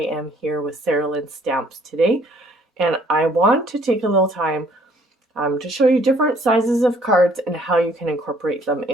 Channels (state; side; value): normal; both; correlation 0.61